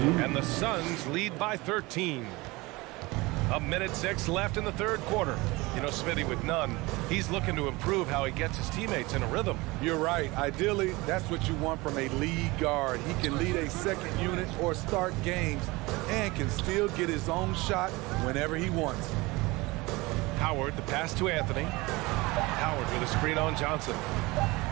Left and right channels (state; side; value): quieter; left; 22.6 dB